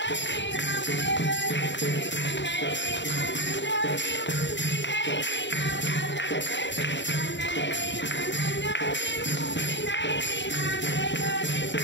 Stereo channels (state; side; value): late; right; 0.53 ms